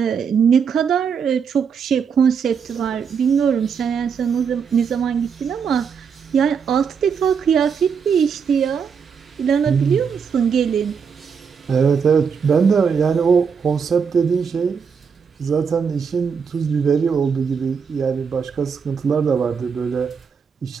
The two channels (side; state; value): left; quieter; 6.4 dB